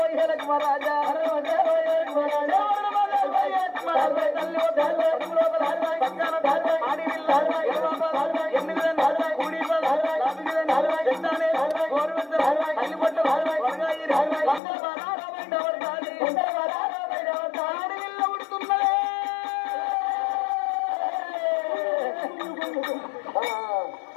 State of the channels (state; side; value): drops out; right; at 14.6 s